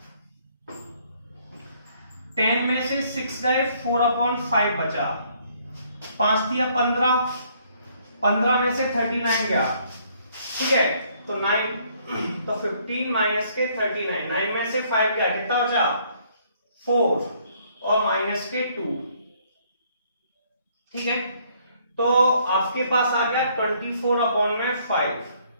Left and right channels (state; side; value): inverted; both; correlation -0.65